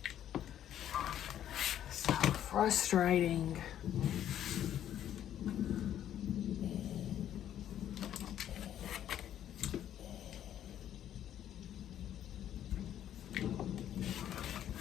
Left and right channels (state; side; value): quieter; right; 10.9 dB